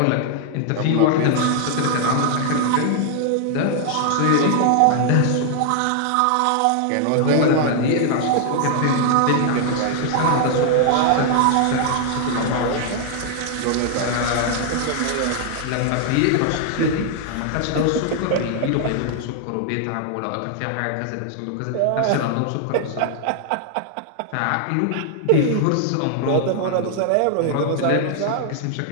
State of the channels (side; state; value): both; different; correlation 0.00